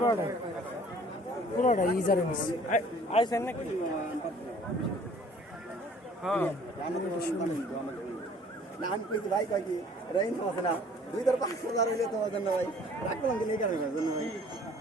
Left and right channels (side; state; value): both; normal; correlation 0.54